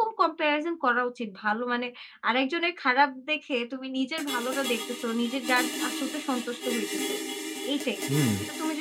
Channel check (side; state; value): both; identical; correlation 1.00